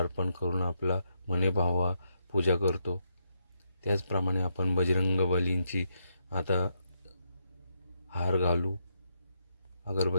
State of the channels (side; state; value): both; inverted; correlation -0.79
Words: करून आपला मने भावा पूजा करतो. त्याचप्रमाणे आपण बजरंगबलींची आता हार घालू,